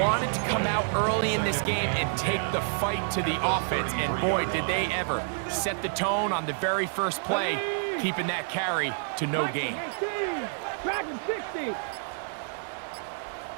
wanted to come out early in this game and take the fight to the offense, and boy, did they ever set the tone on the very first play, keeping that carry to no gain. Dragon 60.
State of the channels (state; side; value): silent; left; digital silence